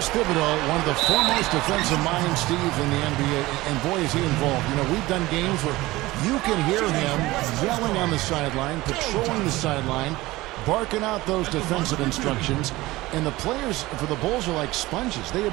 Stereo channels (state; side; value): quieter; left; 19.1 dB